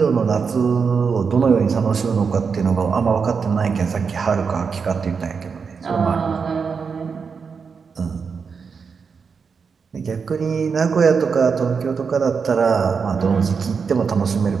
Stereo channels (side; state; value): left; quieter; 5.7 dB